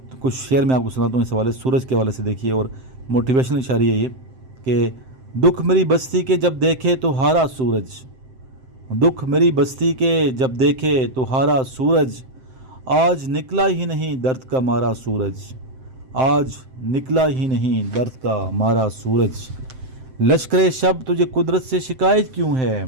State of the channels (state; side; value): late; left; 7.7 ms